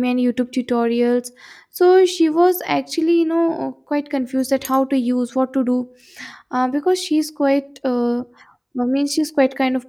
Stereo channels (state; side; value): identical; both; correlation 1.00